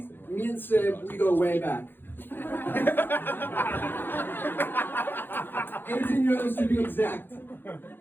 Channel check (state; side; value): late; right; 0.099 ms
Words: me and Seb, we go way back. 18 years to be exact.